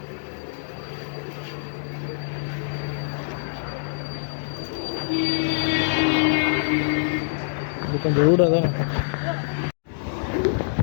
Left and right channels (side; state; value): right; silent; digital silence